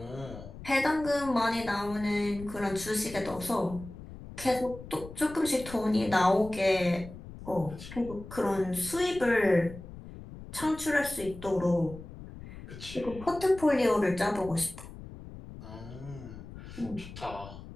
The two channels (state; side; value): noise; left; rumble, 14 dB below the sound